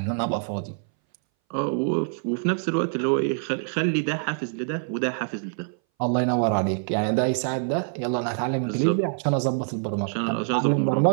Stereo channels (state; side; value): silent; left; 60 dB below the other